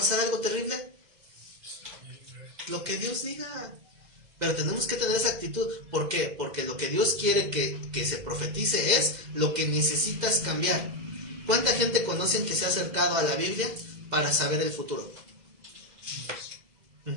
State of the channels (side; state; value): left; late; 2.0 ms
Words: algo terrible, lo que Dios diga. Pero tenemos que tener esa actitud. ¿Por qué? Porque lo que Dios quiere que se profetice es lo que necesitas cambiar. ¿Cuánta gente conocen que se ha acercado a la Biblia para saber el futuro?